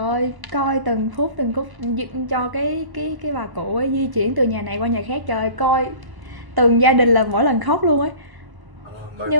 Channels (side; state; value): left; late; 1.0 ms